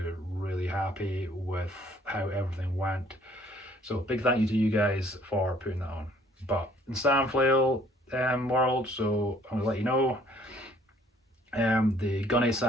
really happy with how everything went. So big thank you to you guys for putting that on. But in Sandflail world, so I'm gonna let you know, the gunny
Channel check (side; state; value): both; normal; correlation 0.60